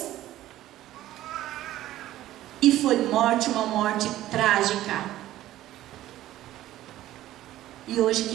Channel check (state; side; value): quieter; left; 14.3 dB